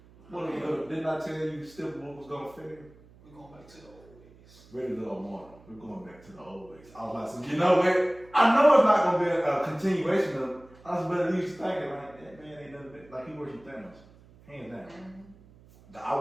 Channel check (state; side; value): noise; right; hum, 25 dB below the sound